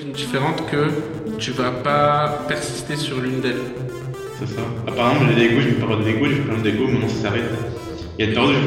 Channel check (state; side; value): identical; both; correlation 1.00